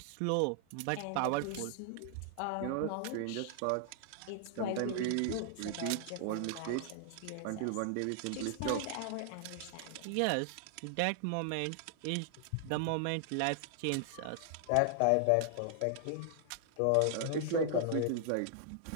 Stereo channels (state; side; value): different; both; correlation -0.01